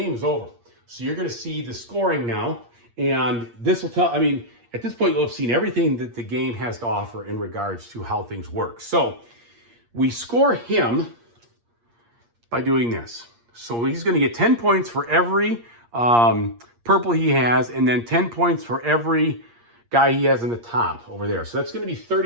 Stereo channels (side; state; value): left; late; 8.5 ms